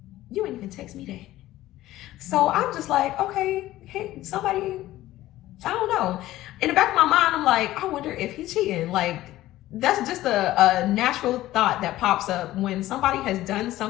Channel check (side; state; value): right; quieter; 15.5 dB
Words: You ain't even text me that. So I'm just like, okay, hey, somebody, I don't know. In the back of my mind, I'm like, I wonder if he's cheating. Like, that's just a natural thought that pops up when somebody has done